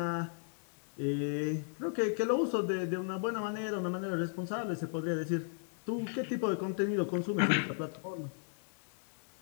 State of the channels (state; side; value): silent; right; 54 dB below the other